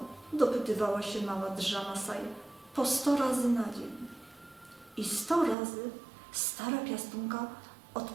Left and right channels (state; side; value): drops out; left; at 5.6 s